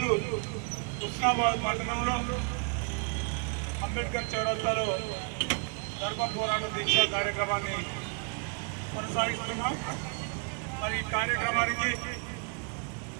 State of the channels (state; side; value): quieter; left; 36.3 dB